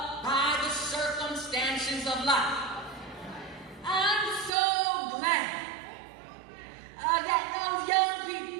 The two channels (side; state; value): left; drops out; at 4.5 s